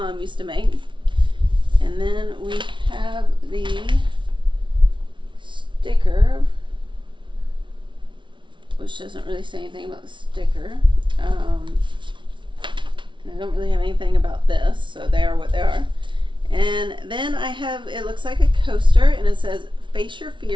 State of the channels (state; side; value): late; left; 0.24 ms